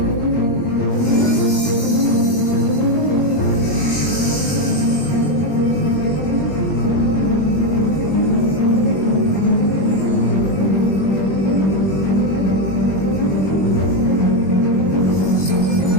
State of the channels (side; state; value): right; late; 21 ms